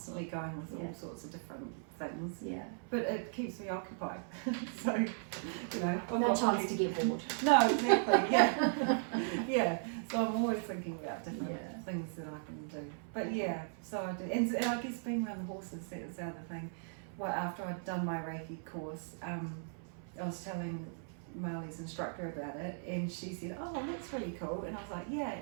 going with all sorts of different things. Yeah. But it keeps me occupied. So, I've no chance to get bored. No, exactly. Yeah. So I'm always thinking about different things that I can do. But so I do, and I guess being around the horses, that was the other thing. Well, after I'd done my Reiki course, I was telling Marley's instructor about it, and she said, oh, that's really cool, and I was like, yeah,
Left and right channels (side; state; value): left; silent; 53 dB below the other